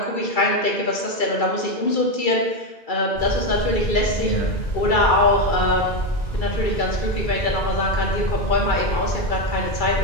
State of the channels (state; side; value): late; right; 2.3 ms